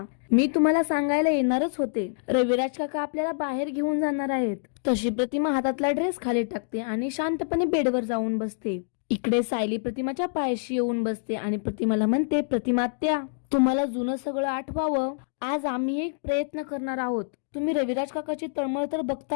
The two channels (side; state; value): right; silent; digital silence